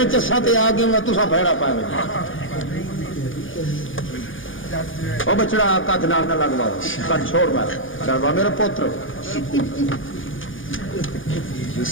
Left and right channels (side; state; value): right; late; 0.58 ms